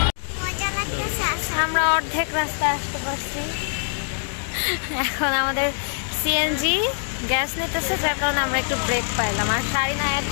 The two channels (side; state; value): right; silent; digital silence